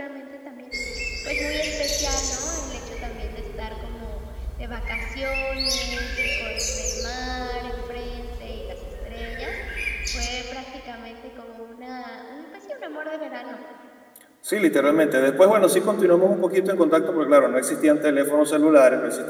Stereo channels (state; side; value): identical; both; correlation 1.00